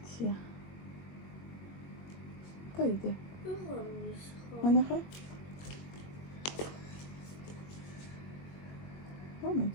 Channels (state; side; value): late; right; 21 ms